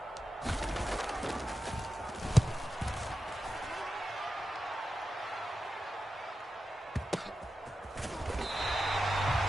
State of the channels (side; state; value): both; normal; correlation 0.91